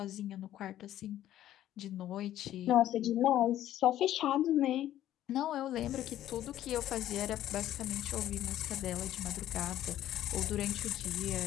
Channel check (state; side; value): quieter; right; 12.6 dB